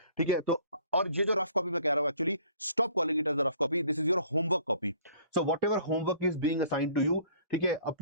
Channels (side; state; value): both; inverted; correlation -0.55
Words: ठीक है। तो और ये जो रफ कॉपी मैं कह रहा हूं, actually stop calling it as a rough copy, this is your homework copy. So whatever homework is being assigned to you, ठीक है,